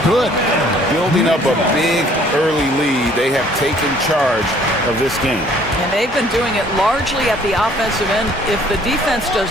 Building up a big early lead, they have taken charge of this game. And they've been doing it largely at the offensive end. If the defense does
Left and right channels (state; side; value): normal; both; correlation 0.58